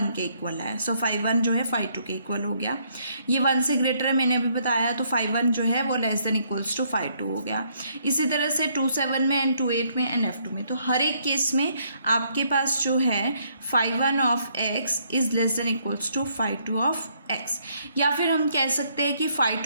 के इक्वल है। सो फाई वन जो है फाई टू के इक्वल हो गया। ये 1 से ग्रेटर है, मैंने अभी बताया, तो फाई वन जो है वो less than equals to phi two हो गया। इसी तरह से 27 में एंड 28 में एंड F2 में, तो हर एक केस में आपके पास जो है phi one of X is less than equals to phi two of X. या फिर हम कह सकते हैं कि फाई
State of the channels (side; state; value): both; inverted; correlation -0.70